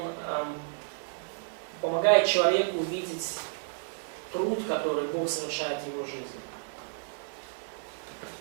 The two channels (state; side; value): silent; left; digital silence